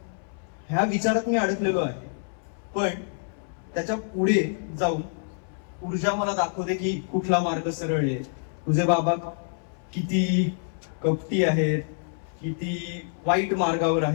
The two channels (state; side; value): silent; right; 60 dB below the other